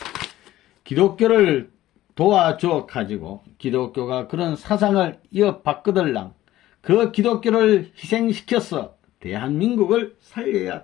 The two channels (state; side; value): quieter; right; 14.8 dB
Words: 기독교를 도와줘 가지고 기독교가 그런 사상을 이어받거들랑 그 기독교를 희생시켜서 대한민국을